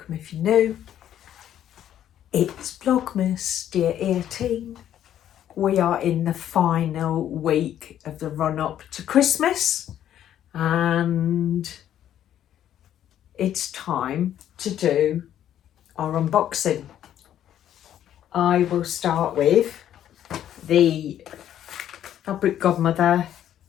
if you're new. It's Vlogmas, day 18. We are in the final week of the run up to Christmas and it's time to do our unboxing. I will start with the Fabric Godmother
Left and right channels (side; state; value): right; quieter; 10.9 dB